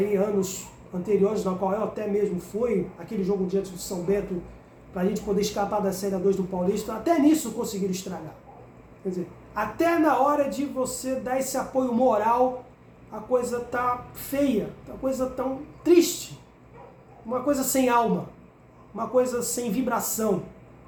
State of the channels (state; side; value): identical; both; correlation 1.00